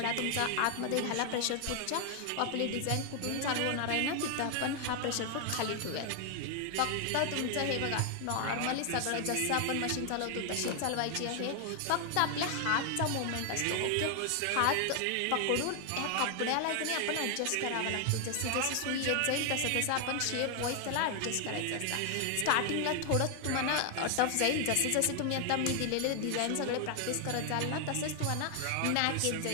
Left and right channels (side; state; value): both; different; correlation 0.00